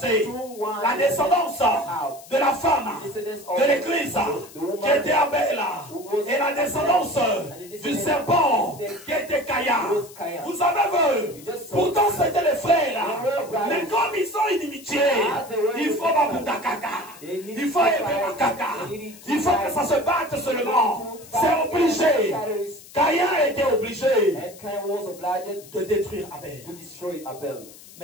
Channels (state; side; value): noise; left; hiss, 20 dB below the sound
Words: La descendance de la femme, de l'église, qui était Abel, et la descendance du serpent, qui était Caïn. Vous avez vu, pourtant c'était les frères, mais comme ils sont inimitiés, il faut Babundakaka, il faut Ebebakaka, il faut que ça se batte seulement. C'est obligé. Caïn était obligé de détruire Abel.